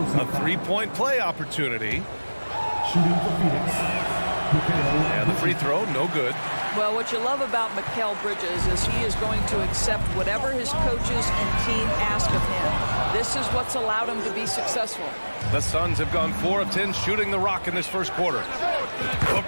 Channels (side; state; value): both; inverted; correlation -1.00